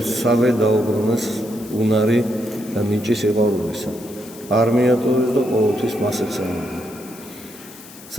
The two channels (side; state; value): left; noise; hiss, 19 dB below the sound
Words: დაუბრუნეს უნარი და ნიჭი სიყვარულისა. არ მიატოვეს და ყოველთვის მას ეცემდნენ.